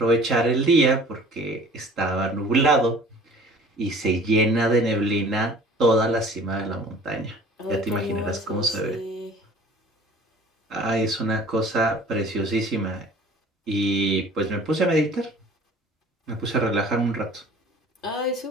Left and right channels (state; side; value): normal; both; correlation 0.48